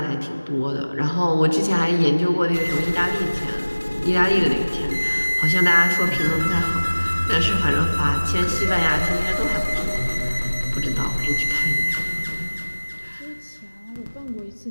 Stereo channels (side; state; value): both; inverted; correlation -1.00